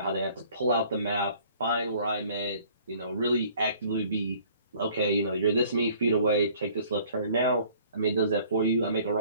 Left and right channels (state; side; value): inverted; both; correlation -0.54